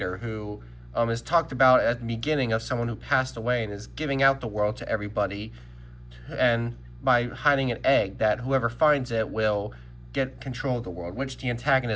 who is talked about at the beginning of someone who passed away and is giving out the world to everybody, and by hiding an egg that whoever finds it will get control of the world, which the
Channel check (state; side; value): identical; both; correlation 1.00